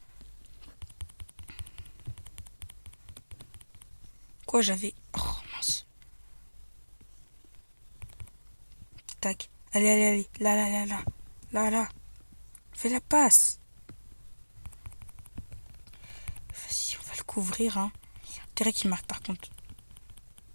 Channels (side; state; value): both; inverted; correlation -1.00